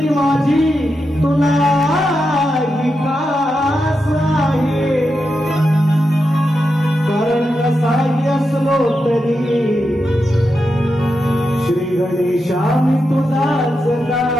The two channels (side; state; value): both; normal; correlation 0.87